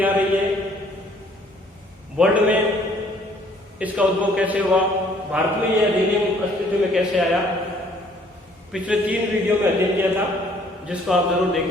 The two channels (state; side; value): normal; both; correlation 0.60